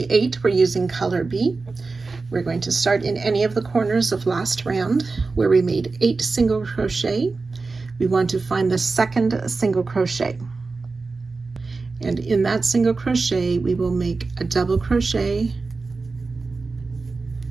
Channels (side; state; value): left; quieter; 4.0 dB